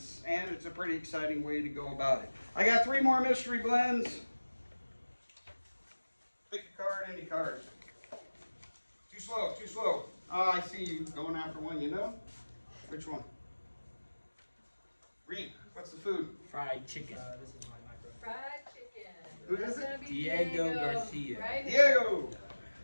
and it's a pretty exciting way to go about it. I got 3 more mystery blends. Pick a card, any card. Too slow, too slow. Oh, I see you going after one, you know? Which one? Reed, what's the food? Fried chicken. This is my micro. Fried chicken. Who is That's it? gonna be Diego Garcia. Right? Diego!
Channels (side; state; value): both; inverted; correlation -1.00